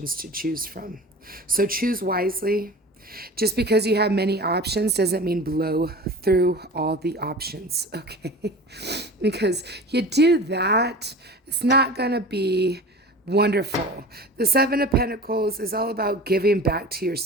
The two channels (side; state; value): both; normal; correlation 0.36